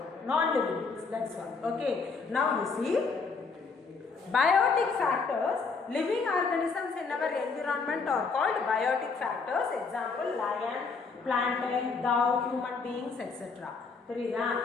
non-living things. That's all. Okay. Now you see biotic factors, living organisms in our environment are called biotic factors. Example, lion, plantain, dog, human beings, etc. Therida,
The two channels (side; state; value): right; quieter; 4.7 dB